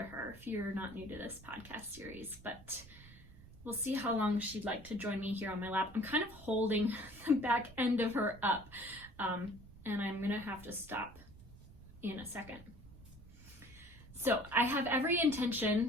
her if you're not new to this podcast series, but we'll see how long she'd like to join me here on my lap. I'm kind of holding the back end of her up. And I'm gonna have to stop in a second. So I have every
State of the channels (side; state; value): right; noise; rumble, 20 dB below the sound